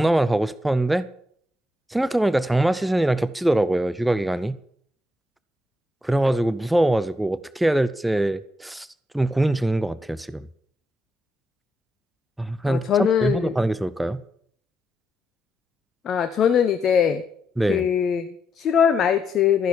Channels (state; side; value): normal; both; correlation 0.82